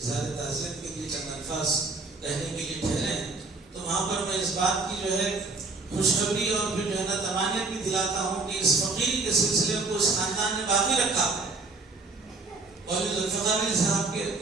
تعزیت کے لیے چند الفاظ کہنے کے لیے ٹھہرے ہیں، تو وہاں پر میں اس بات کی جو ہے خوشخبری اور پھر جو ہے نا تمانیت بھی دلاتا ہوں کہ اس فقیری کے سلسلے کو اس خاندان نے باقی رکھا، اور ذوالفقار علی صاحب کے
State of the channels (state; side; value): quieter; left; 3.7 dB